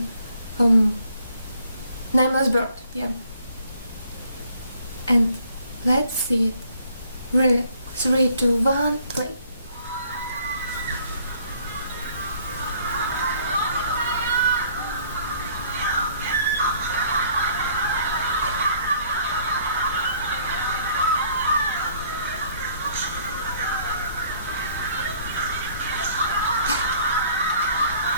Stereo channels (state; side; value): inverted; both; correlation -0.61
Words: Nameless Bird. Yeah. And let's see it. Really. 3, 2, 1, play.